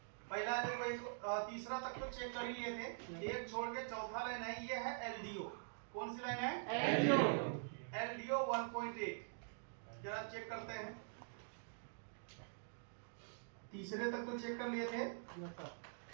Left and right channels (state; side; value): silent; left; digital silence